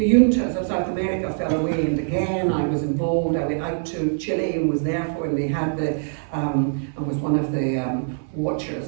juntas of South America fell away, and again I was involved. I went out to Chile and was there for, and they had the, and was one of the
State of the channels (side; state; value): left; silent; digital silence